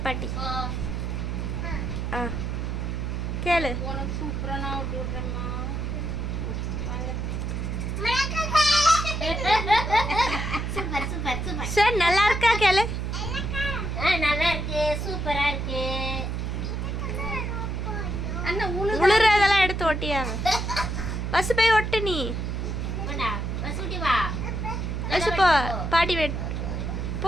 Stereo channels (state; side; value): noise; right; hum, 2 dB below the sound